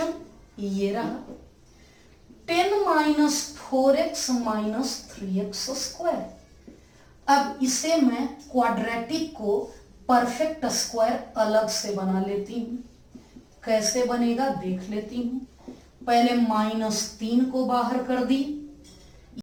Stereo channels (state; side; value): identical; both; correlation 1.00